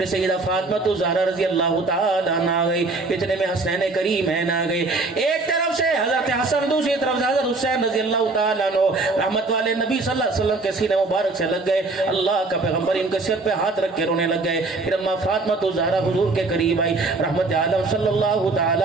سیدہ فاطمہ الزہرا رضی اللہ تعالیٰ عنہ آ گئی، اتنے میں حسنین کریمین آ گئے، ایک طرف سے حضرت حسن، دوسری طرف سے حضرت حسین رضی اللہ تعالیٰ عنہ، رحمت والے نبی صلی اللہ علیہ وسلم کے سینے مبارک سے لگ گئے، اللہ کا پیغمبر ان کے سر پہ ہاتھ رکھ کے رونے لگ گئے، پھر اما فاطمہ الزہرا حضور کے قریب آئی، رحمت عالم صلی اللہ تعالی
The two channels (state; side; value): quieter; left; 3.4 dB